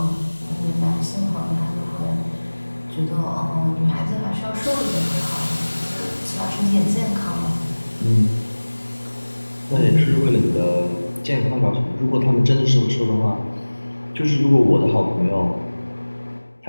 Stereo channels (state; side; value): inverted; both; correlation -1.00